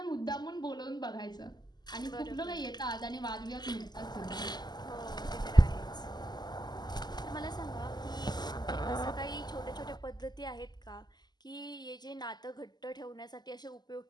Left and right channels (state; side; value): late; right; 0.20 ms